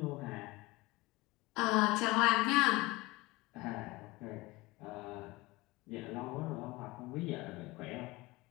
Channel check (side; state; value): right; quieter; 21.6 dB